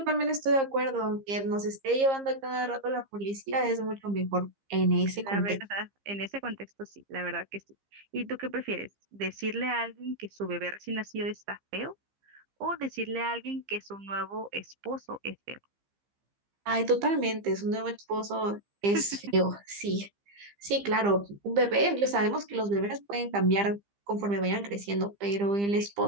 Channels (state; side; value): late; left; 15 ms